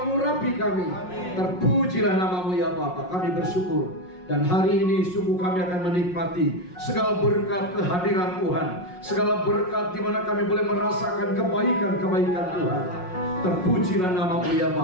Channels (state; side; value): late; right; 5.5 ms